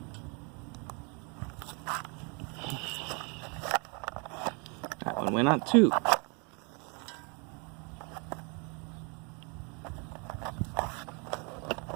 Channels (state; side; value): quieter; left; 33.9 dB